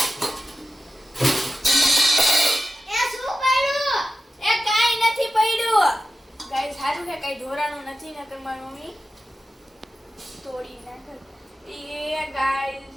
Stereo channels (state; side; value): normal; both; correlation 0.93